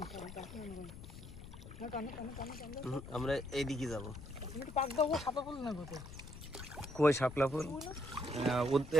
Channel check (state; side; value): noise; left; rumble, 13 dB below the sound